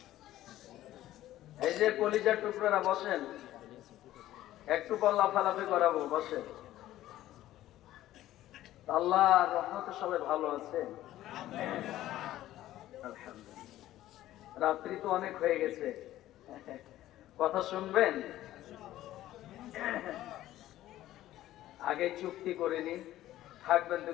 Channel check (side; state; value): right; quieter; 14.2 dB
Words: এই যে কলিজার টুকরারা বসেন, একটু পর লাফালাফি করাবো, বসেন। আল্লাহর রহমতে সবাই ভালো আছে? আলহামদুলিল্লাহ। রাত্রি তো অনেক হয়ে গেছে, কথা শুনবেন? আগে চুক্তি করে নি, থাকবেন তো